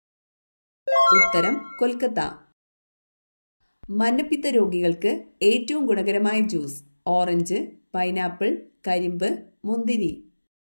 ഉത്തരം കൊൽക്കത്ത. മഞ്ഞപ്പിത്ത രോഗികൾക്ക് ഏറ്റവും ഗുണകരമായ ജ്യൂസ്: ഓറഞ്ച്, പൈനാപ്പിൾ, കരിമ്പ്, മുന്തിരി.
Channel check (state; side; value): inverted; both; correlation -1.00